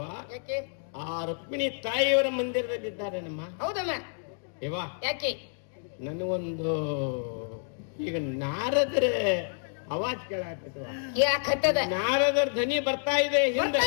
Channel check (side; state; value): right; silent; digital silence